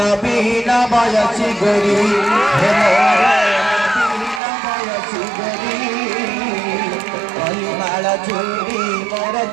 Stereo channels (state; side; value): drops out; left; at 4.4 s